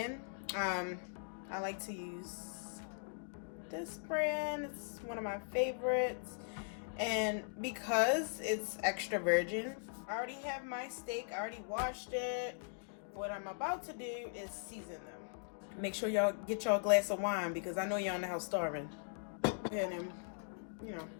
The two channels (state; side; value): silent; right; digital silence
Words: I like to use this brand. It's one of my favorites. And because it's extra virgin, I already have my steak. I already washed it. What I'm about to do is season them. Make sure y'all get y'all a glass of wine because I know y'all in the house starving. And you know,